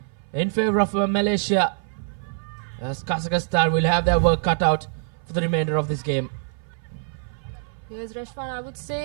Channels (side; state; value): left; silent; 57 dB below the other